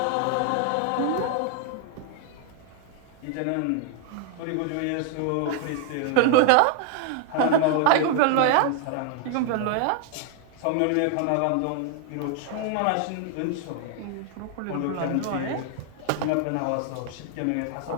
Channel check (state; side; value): different; both; correlation 0.00